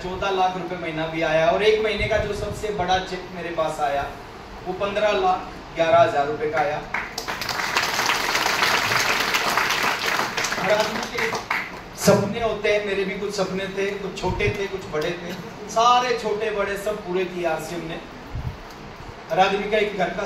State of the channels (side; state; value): both; identical; correlation 1.00